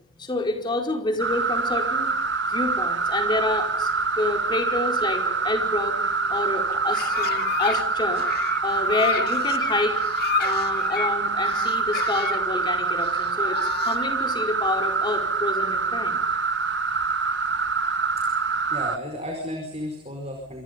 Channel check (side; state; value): both; normal; correlation 0.24